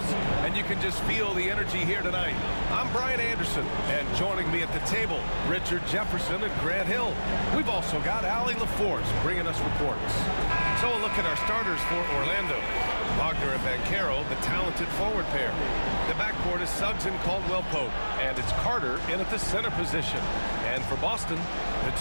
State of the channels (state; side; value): inverted; both; correlation -1.00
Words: And you can just feel the energy here tonight. I'm Brian Anderson, and joining me at the table, Richard Jefferson and Grant Hill. We've also got Allie LaForce bringing us reports. So a look at our starters for Orlando. Wagner and Banchero, the talented forward pair. The backcourt is Suggs and Caldwell-Pope, and it's Carter in at the center position. And for Boston, the